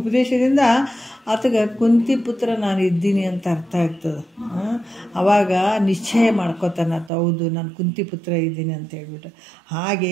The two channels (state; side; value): drops out; left; at 7.1 s